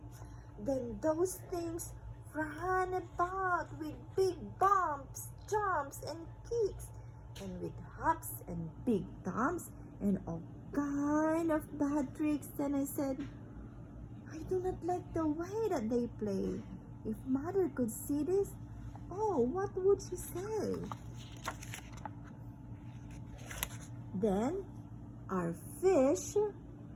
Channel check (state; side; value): identical; both; correlation 1.00